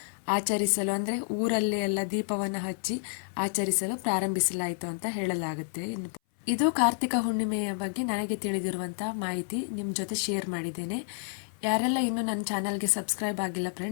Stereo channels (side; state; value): right; silent; 58 dB below the other